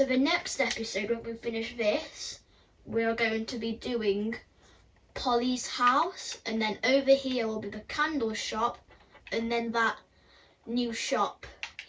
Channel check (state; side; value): identical; both; correlation 1.00